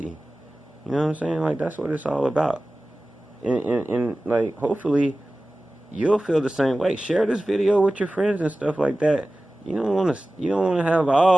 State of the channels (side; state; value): both; normal; correlation 0.96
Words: You know what I'm saying? Like, that's what it's all about. And like, hopefully you'll feel the same way. Share this video with your friends and stuff like that. You don't want to have